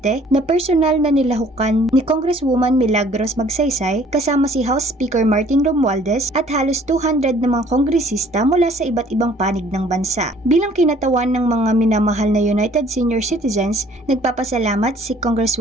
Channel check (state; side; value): normal; both; correlation 0.56